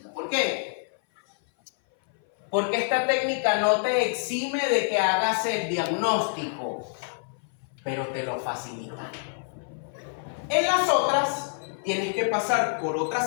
¿Por qué? Porque esta técnica no te exime de que hagas el diagnóstico, pero te lo facilita. En las otras, tienes que pasar por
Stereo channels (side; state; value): right; silent; 57 dB below the other